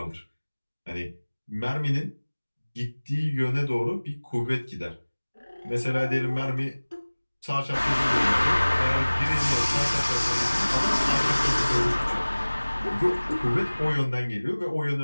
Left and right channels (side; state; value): both; inverted; correlation -1.00